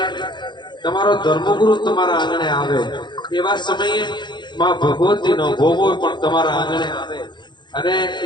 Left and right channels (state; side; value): late; right; 0.22 ms